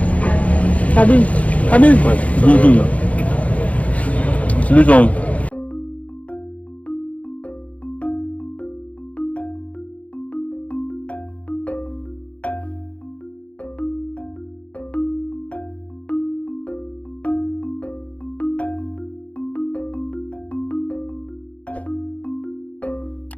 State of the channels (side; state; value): right; late; 0.066 ms